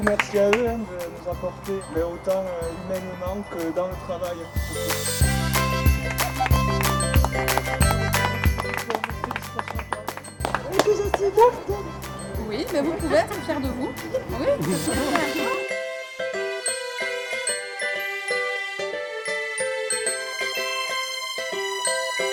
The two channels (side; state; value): both; identical; correlation 1.00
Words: merci à eux de nous apporter, mais autant humainement que dans le travail. Oui, mais vous pouvez être fiers de vous. Oui.